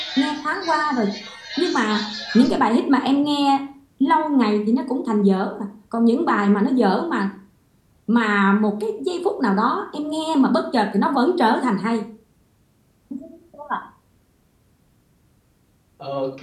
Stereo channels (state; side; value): identical; both; correlation 1.00